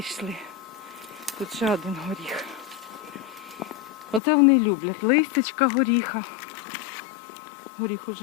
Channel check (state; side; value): drops out; right; at 4.2 s